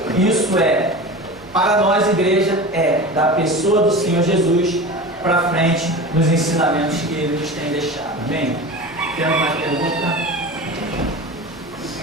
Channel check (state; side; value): noise; right; hum, 27 dB below the sound